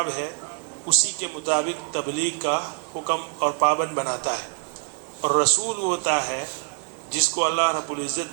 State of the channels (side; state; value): left; quieter; 35.9 dB